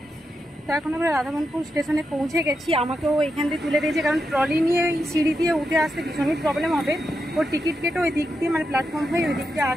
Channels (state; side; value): normal; both; correlation 0.86